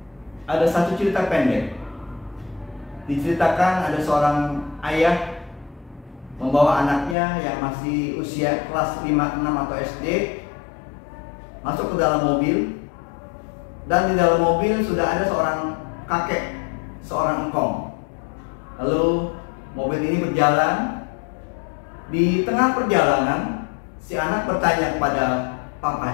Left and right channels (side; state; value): right; drops out; at 7.2 s